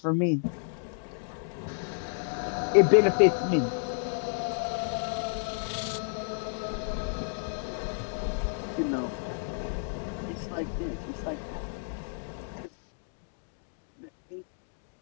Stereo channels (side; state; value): right; silent; digital silence